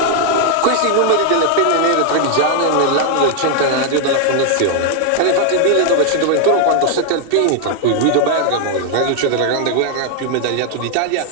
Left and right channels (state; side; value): different; both; correlation 0.00